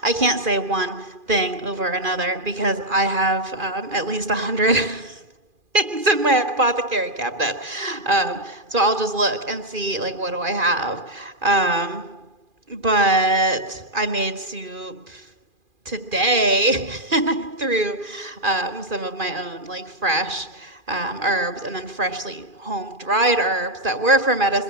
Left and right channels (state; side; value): late; left; 2.4 ms